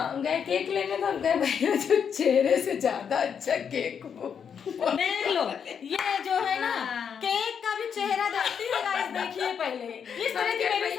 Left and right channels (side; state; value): right; quieter; 7.3 dB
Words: हम गए केक लेने, तो हम कहे भैया जो चेहरे से ज्यादा अच्छा केक वो देख लो, ये जो है ना केक का भी चेहरा देखती है गाइस। देखिए पहले इस तरह की मेरी